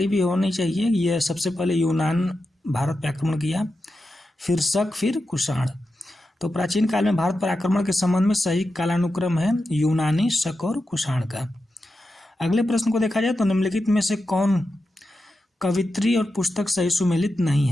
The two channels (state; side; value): normal; both; correlation 0.90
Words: भी होनी चाहिए। यह सबसे पहले यूनान भारत पर आक्रमण किया, फिर शक, फिर कुषाण। तो प्राचीन काल में भारत पर आक्रमण के संबंध में सही कालानुक्रम है यूनानी, शक और कुषाण का। अगले प्रश्न को देखा जाए तो निम्नलिखित में से कौन कवित्री और पुस्तक सही सुमेलित नहीं